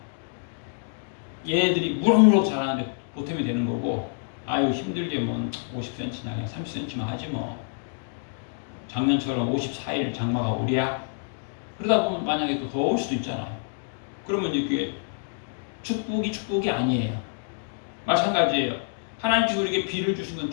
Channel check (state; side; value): silent; right; digital silence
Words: 얘네들이 무럭무럭 자라는데 보탬이 되는 거고, 아유 힘들게 뭐 50cm나 그냥 30cm만 하지 뭐, 작년처럼 54일 장마가 오랴? 그러다 보면 만약에 또 더울 수도 있잖아요. 그러면 이제 그게 축복이 아니에요. 마찬가지예요. 하나님께서 우리에게 비를 주신 건